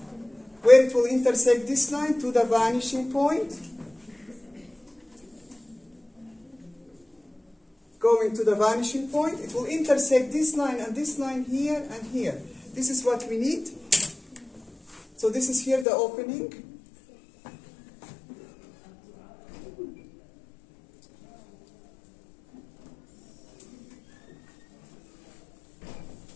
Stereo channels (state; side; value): drops out; right; at 15.9 s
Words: where it will intersect this line to the vanishing point. Going to the vanishing point, it will intersect this line and this line here and here. This is what we need. So this is here the opening.